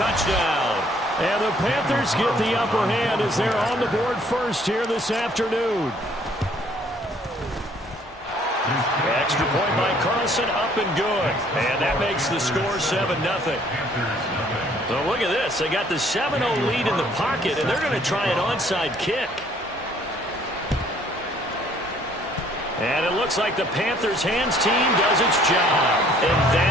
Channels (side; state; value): both; normal; correlation 0.61